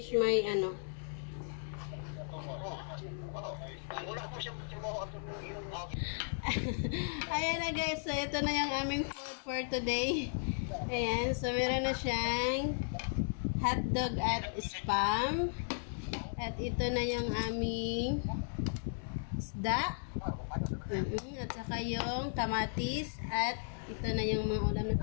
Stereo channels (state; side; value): silent; right; digital silence